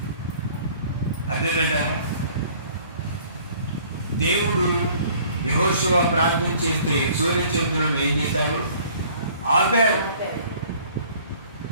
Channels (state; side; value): inverted; both; correlation -0.54